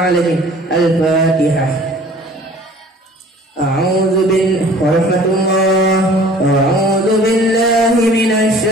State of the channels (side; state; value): both; normal; correlation 0.49